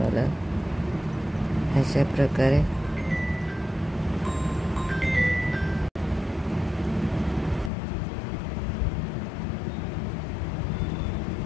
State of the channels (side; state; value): right; drops out; at 7.7 s